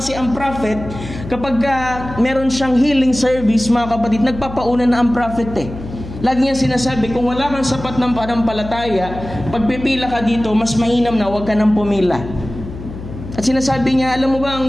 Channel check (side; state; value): left; noise; hum, 11 dB below the sound